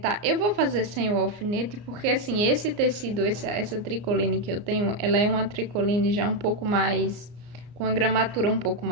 Eu vou fazer sem o alfinete, porque assim, esse tecido, essa tricoline que eu tenho, ela é uma tricoline já um pouco mais, com a gramatura um pouco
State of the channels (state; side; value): late; left; 34 ms